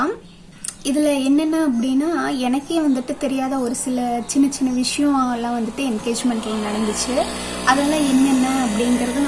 இதில் என்னென்ன அப்படின்னா, எனக்கே வந்துட்டு தெரியாத ஒரு சில சின்ன சின்ன விஷயம் எல்லாம் வந்துட்டு என்கேஜ்மெண்ட்டில் நடந்துச்சு. அதெல்லாம் என்னென்ன அப்படிங்கிறத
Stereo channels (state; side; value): identical; both; correlation 1.00